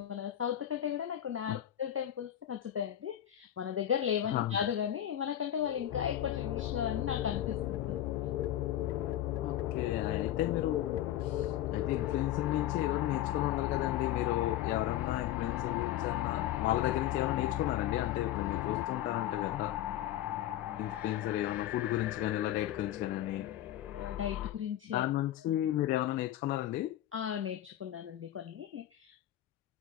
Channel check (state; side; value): quieter; right; 12.4 dB